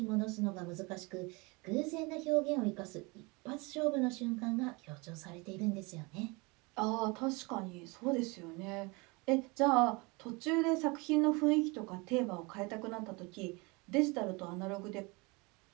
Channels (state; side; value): quieter; left; 27.2 dB